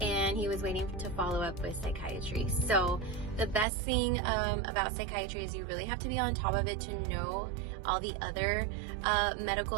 And he was waiting to follow up with psychiatry. So the best thing about psychiatry is you really have to be on top of it to know all the other medical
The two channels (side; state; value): left; drops out; at 3.7 s